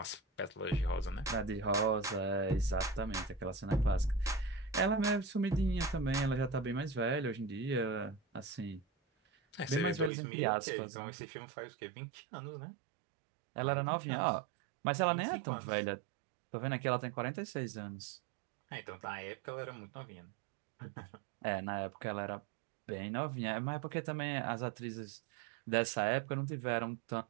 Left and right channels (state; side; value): drops out; left; at 10.1 s